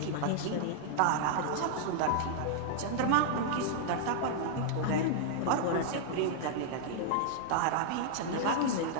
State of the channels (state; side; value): different; both; correlation -0.01